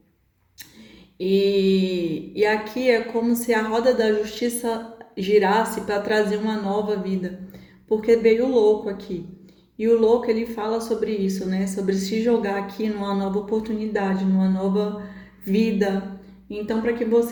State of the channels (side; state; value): both; identical; correlation 1.00